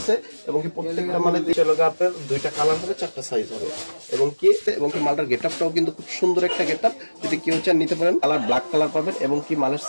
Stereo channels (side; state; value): both; inverted; correlation -1.00